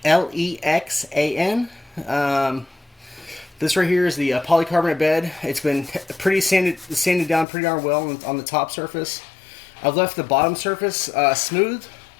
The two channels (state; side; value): drops out; right; at 7.5 s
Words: Lexan. This right here is the polycarbonate bed. It's been pretty sanded down pretty darn well on the top surface. I've left the bottom surface smooth